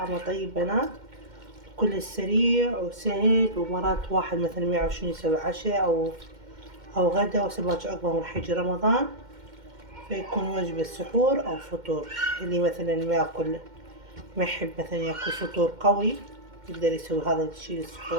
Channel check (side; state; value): left; late; 2.1 ms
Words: طيب بنات، كلش سريع وسهل، ومرات واحد مثلا ما يعرف شنو يسوي عشاء أو غدا وهسه باكر أكبر من حج رمضان، فيكون وجبة سحور أو فطور. اللي مثلا ما يحب مثلا ياكل فطور قوي يقدر يسوي هذا الشي